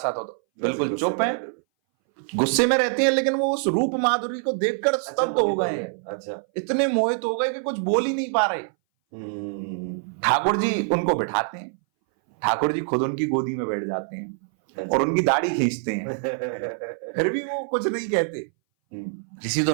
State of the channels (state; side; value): silent; left; 60 dB below the other